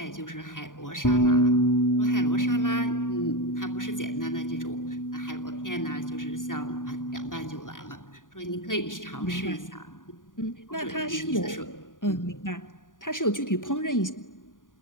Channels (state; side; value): late; right; 0.89 ms